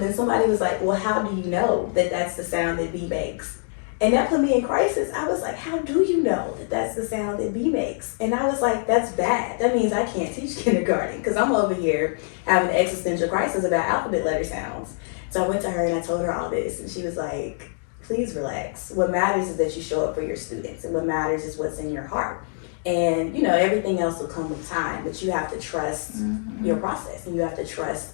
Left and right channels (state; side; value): silent; right; 62 dB below the other